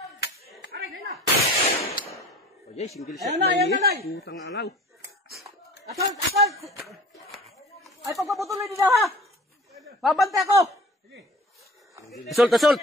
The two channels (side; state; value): both; normal; correlation 0.44